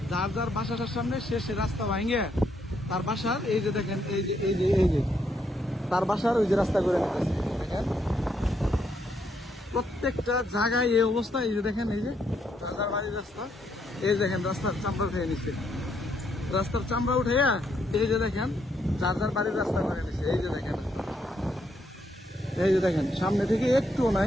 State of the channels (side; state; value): both; normal; correlation 0.75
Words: যার যার বাসাটার সামনে সে রাস্তা ভাঙ্গিয়া তার বাসার এই যে দেখেন এই যে তার বাসার ওই যে রাস্তা করে নিতেছে। দেখেন প্রত্যেকটা জায়গায় এই অবস্থা। এই যে দেখেন এই যে যার যার বাড়ির রাস্তা, এই দেখেন রাস্তার চামড়া উঠে নিচ্ছে, রাস্তার চামড়া উঠাইয়া এই যে দেখেন যার যার বাড়ির রাস্তা করে নিচ্ছে। এই যে দেখেন, এই যে দেখেন সামনে থেকে একটুও